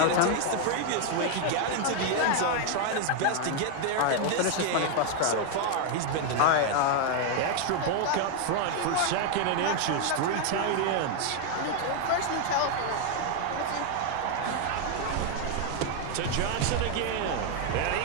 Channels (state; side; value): different; both; correlation 0.01